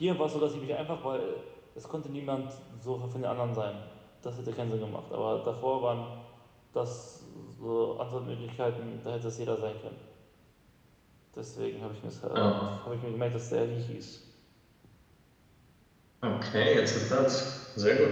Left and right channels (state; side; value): identical; both; correlation 1.00